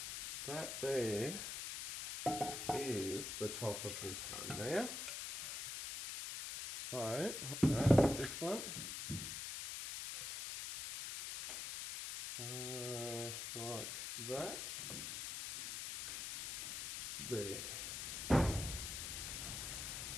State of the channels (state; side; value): noise; left; hiss, 5 dB below the sound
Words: That there is the top of this one now. So, this one. Like that. There.